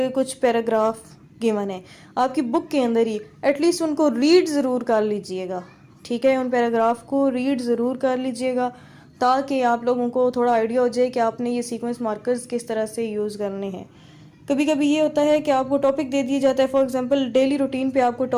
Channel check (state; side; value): identical; both; correlation 1.00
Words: पैराग्राफ गिवन है आपकी बुक के अंदर ही, एटलीस्ट उनको रीड ज़रूर कर लीजिएगा। ठीक है, उन पैराग्राफ को रीड ज़रूर कर लीजिएगा ताकि आप लोगों को थोड़ा आइडिया हो जाए कि आपने ये सीक्वेंस मार्कर्स किस तरह से यूज़ करने हैं। कभी कभी ये होता है कि आपको टॉपिक दे दिया जाता है, फॉर एग्जांपल डेली रूटीन पे आपको